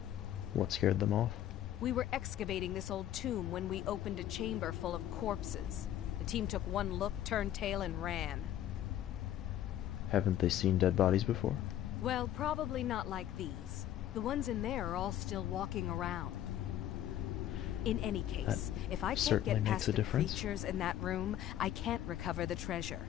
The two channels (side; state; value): right; quieter; 11.8 dB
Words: What scared them off? We were excavating this old tomb when we opened a chamber full of corpses. The team took one look, turned tail, and ran. Haven't they seen dead bodies before? Well, probably not like these. The ones in there are all still walking around. In any case, if I can't get past the creatures in that room, I can't recover the treasure.